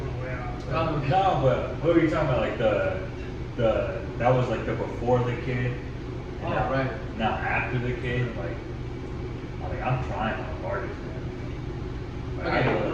way off. No, but what were you talking about? Like the that was like the before the kid. Oh, now, right. Now after the kid, I'm trying my hardest, man. Like, Okay,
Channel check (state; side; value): identical; both; correlation 1.00